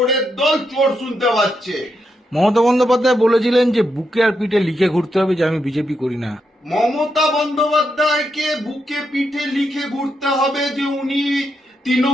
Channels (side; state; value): both; normal; correlation 0.82